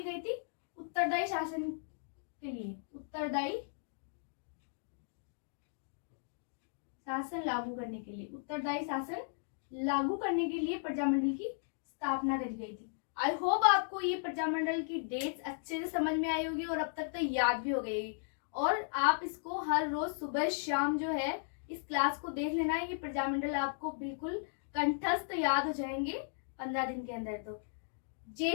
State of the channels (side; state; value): right; silent; digital silence